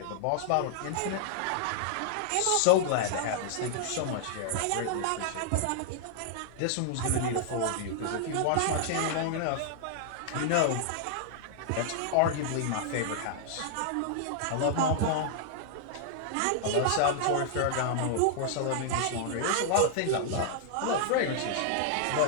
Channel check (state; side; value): different; both; correlation -0.01